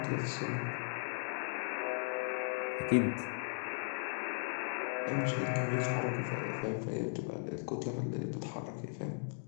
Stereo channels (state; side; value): silent; right; digital silence